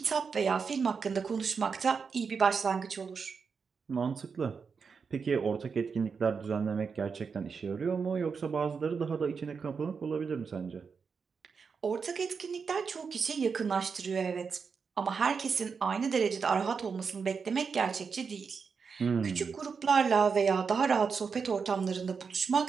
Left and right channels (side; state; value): left; quieter; 5.6 dB